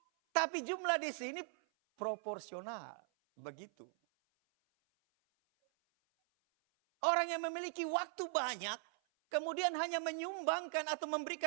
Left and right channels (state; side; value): silent; left; 51 dB below the other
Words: Tapi jumlah di sini proporsional, begitu. Orang yang memiliki waktu banyak, kemudian hanya menyumbangkan atau